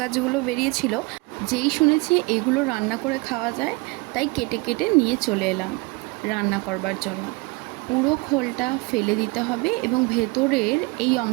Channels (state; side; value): quieter; left; 26.1 dB